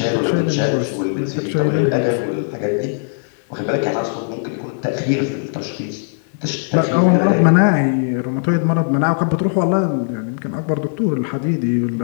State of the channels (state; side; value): silent; right; digital silence